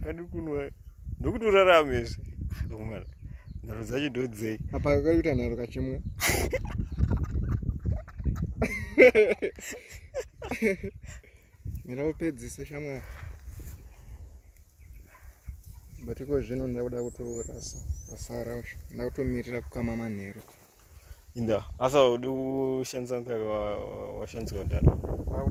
kunwa ndokutorarame izvi mwana nharo dzacho ndodzei apa kakaita nharo kachimwe miraupedzise shamwari batiko zvino ndakuda kutorasa basa racho ndakutomirira kukama manheru inda asa udi kushandisa mukaka washandiswa ndano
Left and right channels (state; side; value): identical; both; correlation 1.00